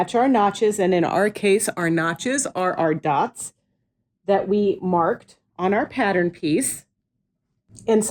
our notches. And in our case, our notches are our dots that we marked on our pattern piece. And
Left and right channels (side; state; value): both; identical; correlation 1.00